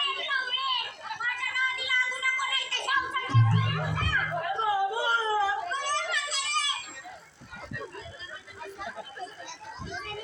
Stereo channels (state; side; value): identical; both; correlation 1.00